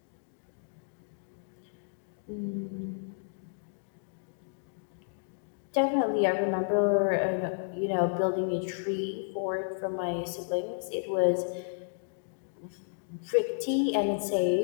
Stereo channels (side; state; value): right; silent; digital silence